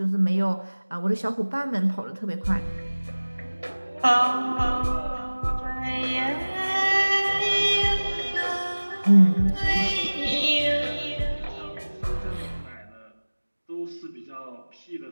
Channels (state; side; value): inverted; both; correlation -1.00